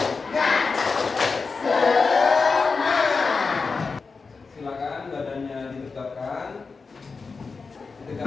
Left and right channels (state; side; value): quieter; right; 4.6 dB